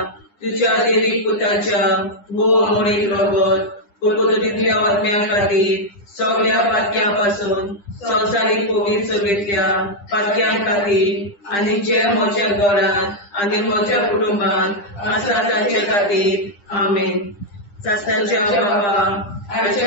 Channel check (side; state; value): right; late; 9.9 ms